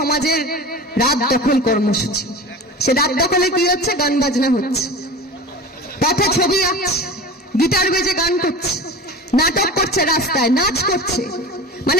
রাত দখল কর্মসূচি। সে রাত দখলে কি হচ্ছে? গান বাজনা হচ্ছে, পথে ছবি আঁকছে, গিটার বেজে গান করছে, নাটক করছে, রাস্তায় নাচ করছে,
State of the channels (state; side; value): normal; both; correlation 0.33